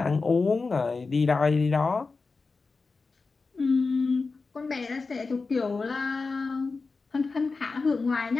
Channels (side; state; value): right; quieter; 4.2 dB